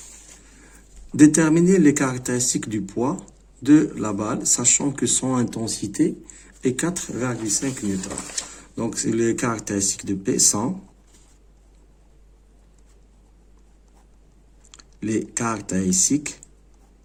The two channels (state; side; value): identical; both; correlation 1.00